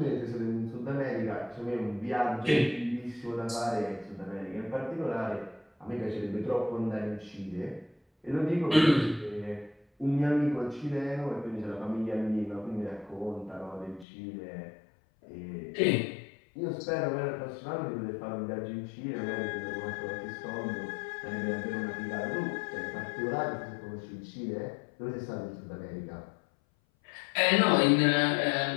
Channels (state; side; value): drops out; right; at 14.1 s